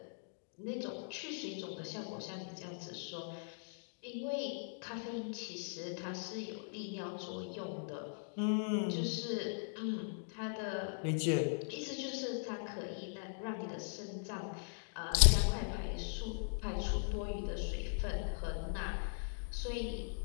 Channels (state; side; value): silent; right; digital silence